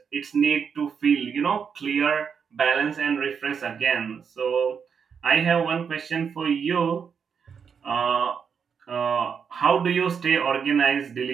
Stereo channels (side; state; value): left; quieter; 6.6 dB